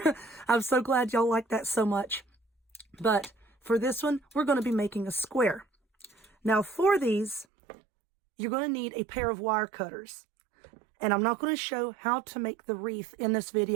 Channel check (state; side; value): drops out; left; at 7.5 s